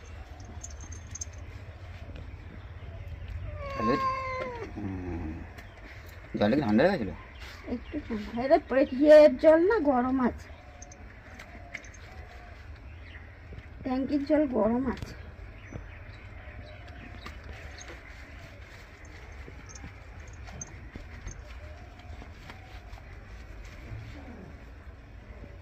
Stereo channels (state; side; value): identical; both; correlation 1.00